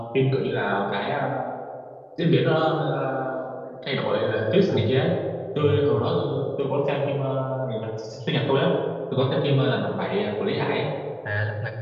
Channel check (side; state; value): both; identical; correlation 1.00